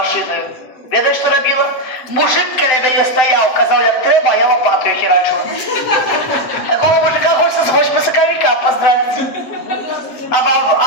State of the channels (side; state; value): right; late; 7.8 ms